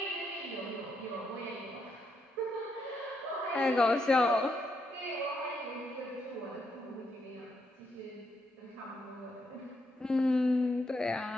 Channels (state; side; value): normal; both; correlation 0.78